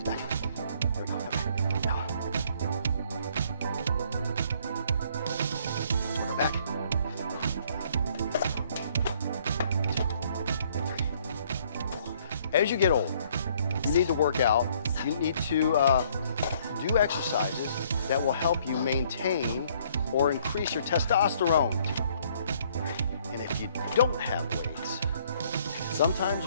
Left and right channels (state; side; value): inverted; both; correlation -0.63